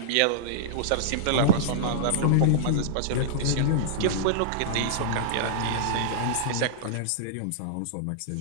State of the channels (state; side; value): different; both; correlation -0.02